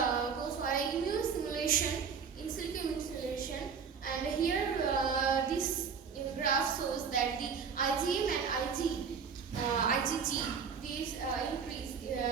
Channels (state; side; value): quieter; left; 6.2 dB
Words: for a immune simulation, in silico immune simulation, and here this graph shows that the IgM and IgG these increase in a